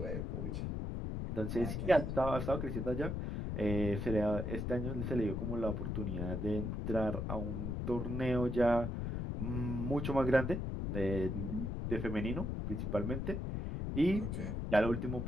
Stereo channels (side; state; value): left; noise; rumble, 2 dB below the sound